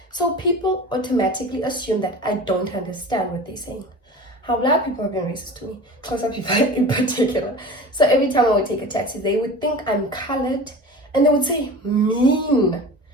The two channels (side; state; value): both; normal; correlation 0.36